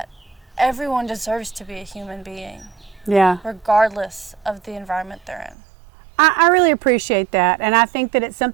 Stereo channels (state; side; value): drops out; left; at 5.6 s